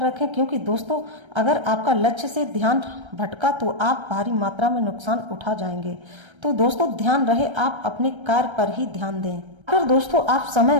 क्योंकि दोस्तों अगर आपका लक्ष्य से ध्यान भटका तो आप भारी मात्रा में नुकसान उठा जाएंगे। तो दोस्तों ध्यान रहे आप अपने कार्य पर ही ध्यान दें। अगर दोस्तों आप समय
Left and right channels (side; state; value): left; late; 1.3 ms